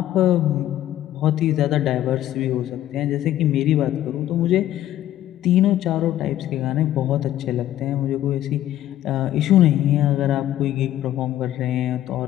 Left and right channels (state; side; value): quieter; right; 12.9 dB